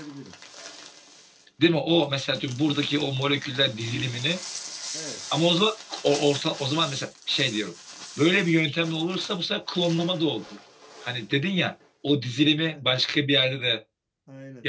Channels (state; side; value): identical; both; correlation 1.00